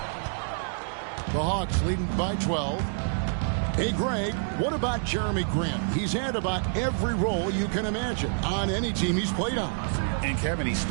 The Hawks leading by 12. Hey, Greg, what about Jeremy Grant? He's had about every role you can imagine on any team he's played on. And Kevin, he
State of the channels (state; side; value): silent; left; digital silence